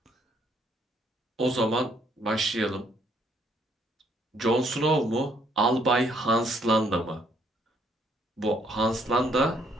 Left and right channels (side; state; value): both; normal; correlation 0.68